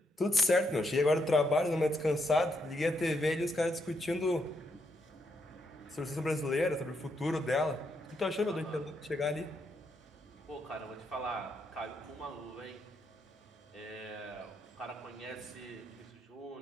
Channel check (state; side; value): normal; both; correlation 0.78